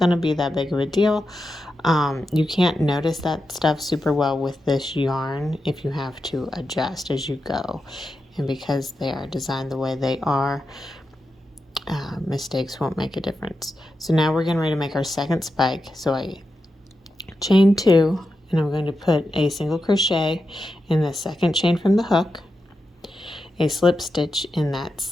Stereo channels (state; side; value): normal; both; correlation 0.89